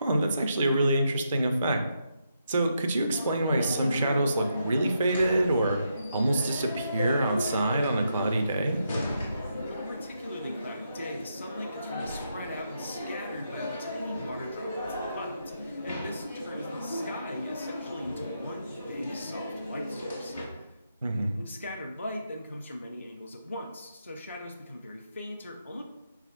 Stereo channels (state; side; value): inverted; both; correlation -0.80